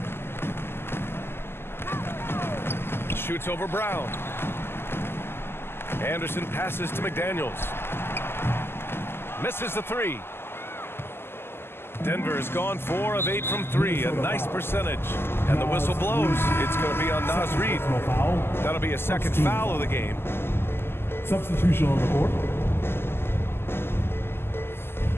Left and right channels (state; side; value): late; right; 0.12 ms